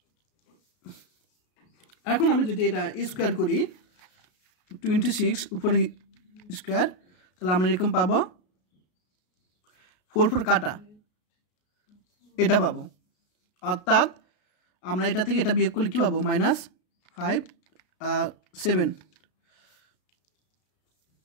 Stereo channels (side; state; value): right; late; 33 ms